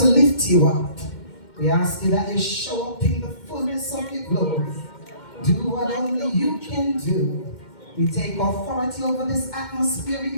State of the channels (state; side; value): late; right; 2.1 ms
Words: lift you up, we ask you that you show up in the fullness of your glory. Do what only you can do. We take authority over this atmosphere